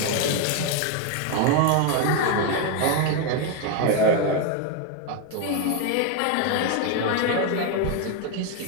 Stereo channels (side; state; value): both; different; correlation 0.01